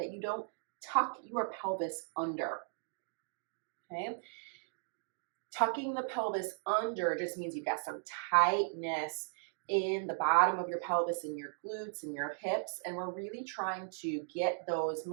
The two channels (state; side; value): silent; left; digital silence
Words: you don't tuck your pelvis under. Okay? Tucking the pelvis under just means you've got some tightness in the bottom of your pelvis, in your glutes and your hips, and we're really trying to get those